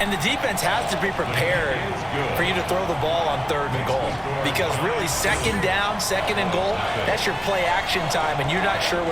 And the defense has to be prepared for you to throw the ball on third and goal. Because really, second down, second and goal, that's your play action time, and you're not sure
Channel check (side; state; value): both; identical; correlation 1.00